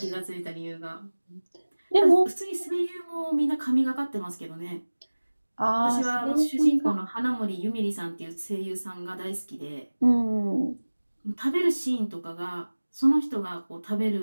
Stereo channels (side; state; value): both; inverted; correlation -1.00